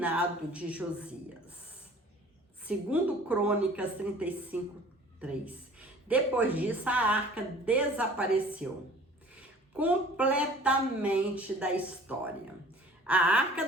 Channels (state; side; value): normal; both; correlation 0.48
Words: de Josias. Segundo Crônicas 35, 3. Depois disso, a arca desapareceu completamente da história. A Arca